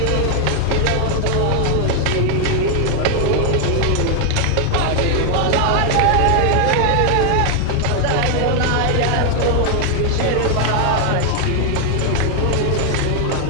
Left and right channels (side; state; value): both; different; correlation 0.00